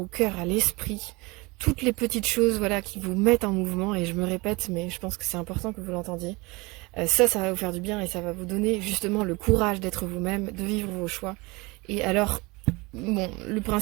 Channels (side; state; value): left; quieter; 24.7 dB